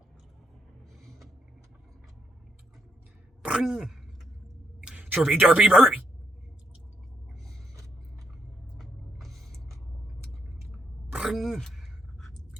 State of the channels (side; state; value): both; normal; correlation 0.77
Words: Chirpy derpy burpy.